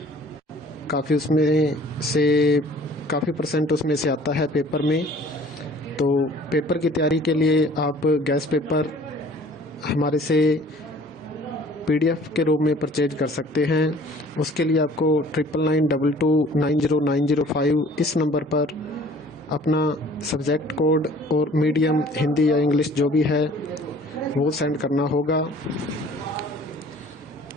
काफ़ी परसेंट उसमें से आता है पेपर में। तो पेपर की तैयारी के लिए आप गैस पेपर हमारे से PDF के रूप में परचेज कर सकते हैं। उसके लिए आपको 9992290905 इस नंबर पर अपना सब्जेक्ट कोड और मीडियम हिंदी या इंग्लिश जो भी है वो सेंड करना होगा।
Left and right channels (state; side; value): normal; both; correlation 0.51